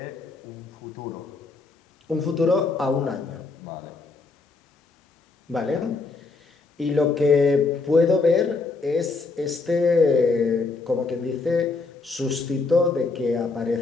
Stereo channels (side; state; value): right; quieter; 4.0 dB